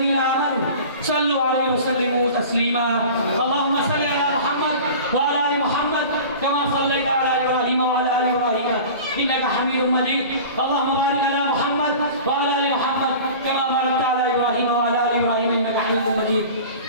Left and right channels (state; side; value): inverted; both; correlation -0.38